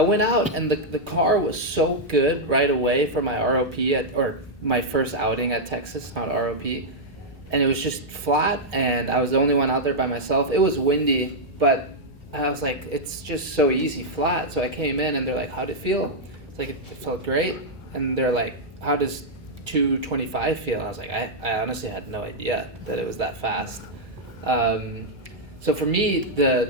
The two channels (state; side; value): normal; both; correlation -0.05